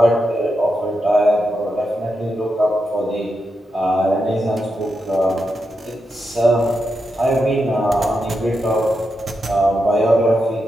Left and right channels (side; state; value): both; normal; correlation 0.86